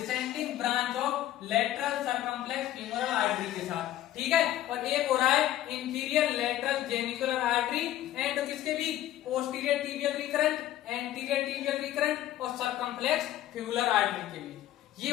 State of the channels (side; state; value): right; quieter; 13.2 dB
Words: branch of lateral circumflex femoral artery के साथ, ठीक है। और एक हो रहा है inferior lateral genicular artery and किसके भी, posterior tibial recurrent, anterior tibial recurrent और सर्कमफ्लेक्स फिबुलर आर्टरी के बीच। ये